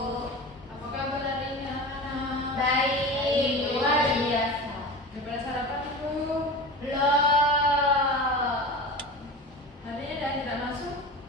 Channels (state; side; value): normal; both; correlation 0.31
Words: Apa kabar hari ini anak-anak? Baik, luar biasa. Udah pada sarapan Ibu? Belum. Hari ini ada tidak masuk?